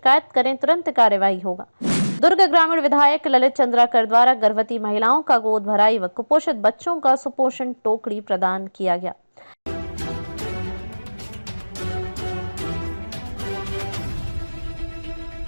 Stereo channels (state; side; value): inverted; both; correlation -1.00